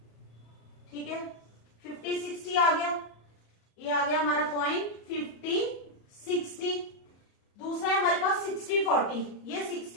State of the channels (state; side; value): late; right; 34 ms